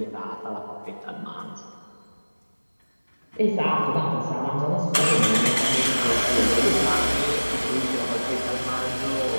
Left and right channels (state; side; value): inverted; both; correlation -1.00